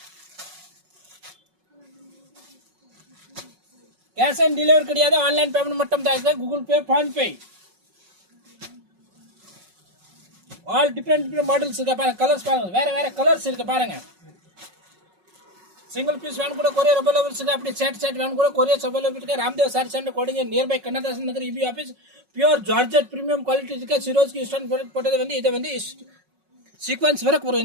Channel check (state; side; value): late; left; 5.4 ms